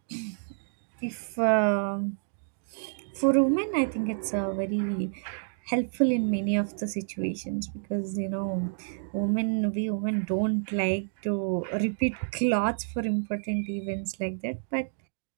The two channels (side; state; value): left; silent; digital silence